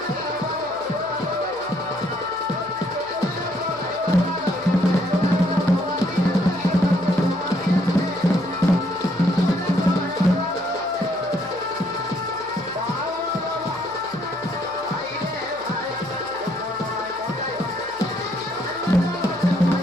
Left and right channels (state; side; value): noise; left; hum, 24 dB below the sound